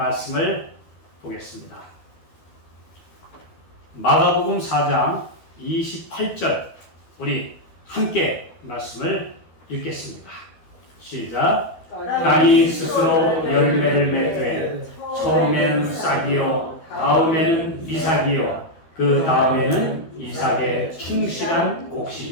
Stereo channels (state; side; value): late; right; 12 ms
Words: 보겠습니다. 마가복음 4장 28절 우리 함께 말씀을 읽겠습니다. 시작. 땅이 스스로 열매를 맺되 처음에는 싹이요 다음에는 이삭이요 그 다음에는 이삭의 충실한